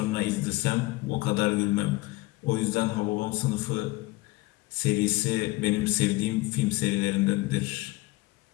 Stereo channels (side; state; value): right; quieter; 21.4 dB